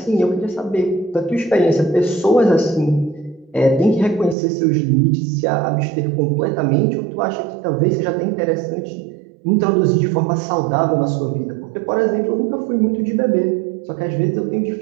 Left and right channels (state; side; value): drops out; left; at 4.4 s